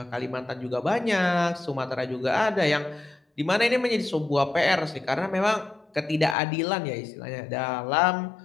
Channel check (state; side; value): drops out; right; at 6.4 s